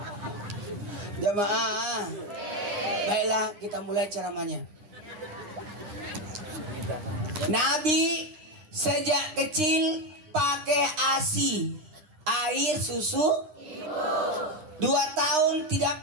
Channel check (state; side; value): late; left; 9.8 ms